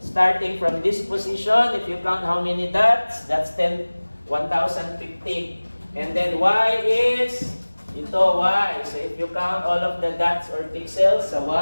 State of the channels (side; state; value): both; inverted; correlation -1.00